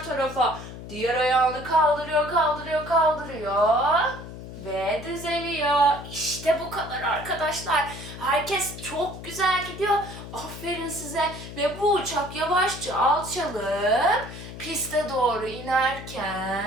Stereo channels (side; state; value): left; noise; hum, 12 dB below the sound